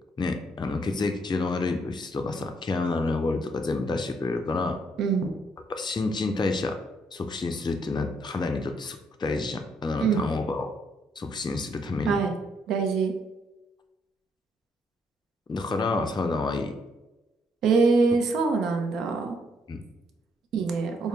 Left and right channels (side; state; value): both; normal; correlation 0.71